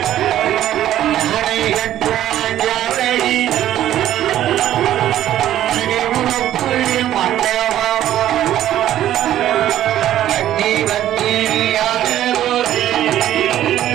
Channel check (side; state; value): left; quieter; 12.3 dB